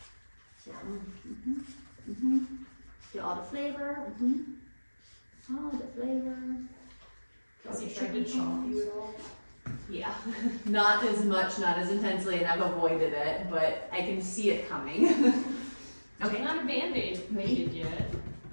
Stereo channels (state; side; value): inverted; both; correlation -1.00